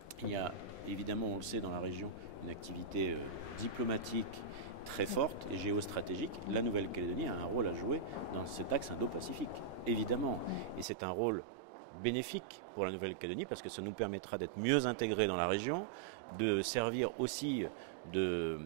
Il y a évidemment, on le sait, dans la région, une activité diplomatique très forte et géostratégique. La Nouvelle-Calédonie a un rôle à jouer dans cet axe Indo-Pacifique, évidemment. Et c'est un rôle bénéfique pour la Nouvelle-Calédonie parce que ça nous permettra d'être mieux intégrés dans la région, de servir aussi de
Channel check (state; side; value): drops out; left; at 10.9 s